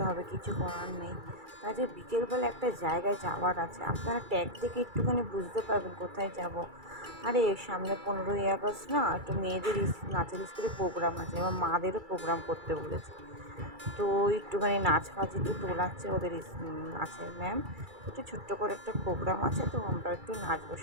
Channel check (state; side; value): late; left; 2.3 ms